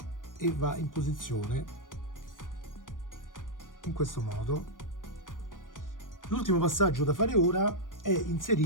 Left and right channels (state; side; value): late; right; 0.89 ms